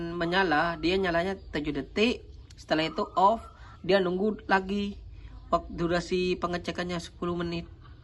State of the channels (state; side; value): identical; both; correlation 1.00